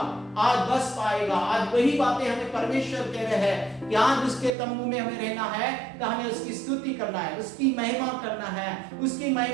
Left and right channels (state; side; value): drops out; left; at 4.5 s